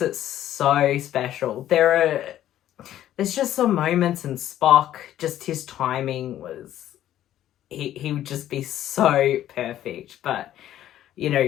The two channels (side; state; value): right; quieter; 12.2 dB